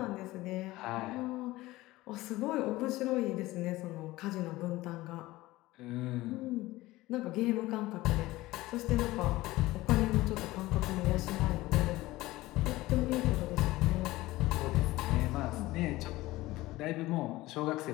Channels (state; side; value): quieter; right; 18.4 dB